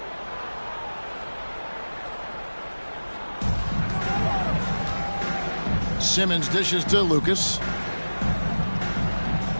Simmons dishes to Lucas.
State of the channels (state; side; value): inverted; both; correlation -1.00